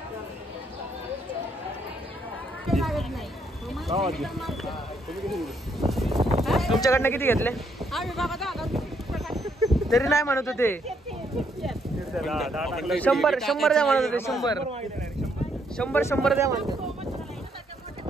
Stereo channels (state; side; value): normal; both; correlation 0.72